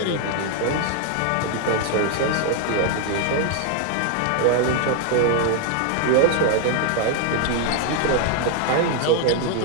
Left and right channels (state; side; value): different; both; correlation 0.00